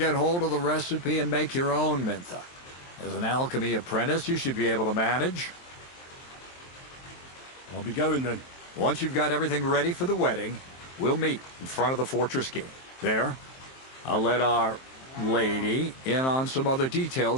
hold of the recipe and make your own Mintha. As an alchemy apprentice, you should be able to manage. I'll be going then. Once you've got everything ready for the wedding, we'll meet in front of the fortress gate. There, I'll let our lady in on some other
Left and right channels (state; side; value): late; right; 23 ms